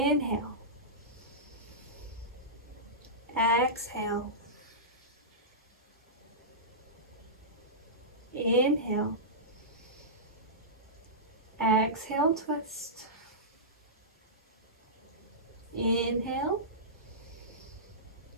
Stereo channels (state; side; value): normal; both; correlation -0.17